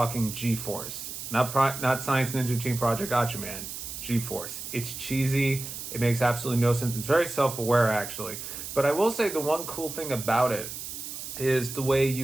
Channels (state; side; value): noise; right; hiss, 8 dB below the sound